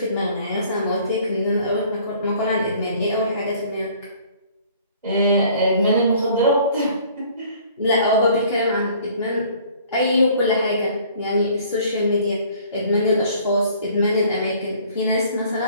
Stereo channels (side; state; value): both; inverted; correlation -0.55